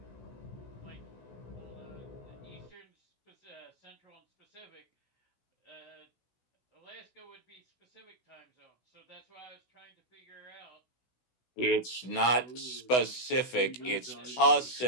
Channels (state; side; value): late; right; 16 ms